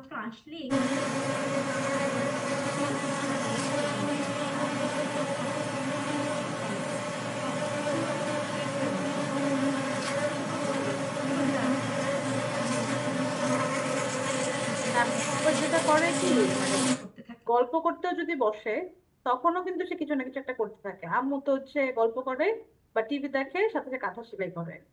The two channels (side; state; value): both; identical; correlation 1.00